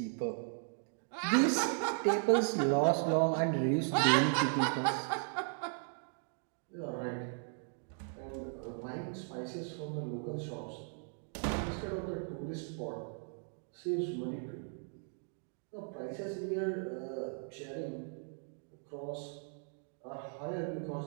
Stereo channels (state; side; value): silent; left; 53 dB below the other